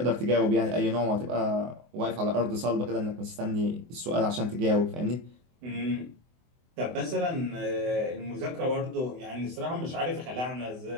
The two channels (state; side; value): late; left; 24 ms